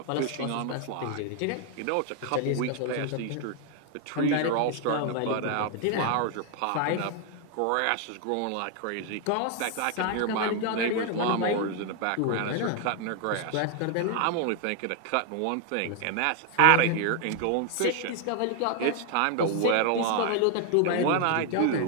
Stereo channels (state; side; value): different; both; correlation 0.00